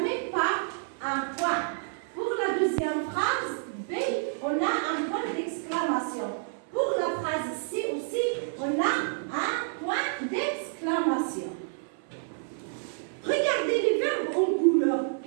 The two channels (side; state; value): left; silent; 57 dB below the other